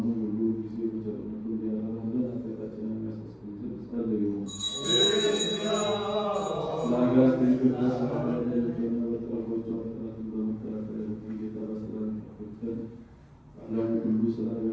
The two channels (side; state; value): both; identical; correlation 1.00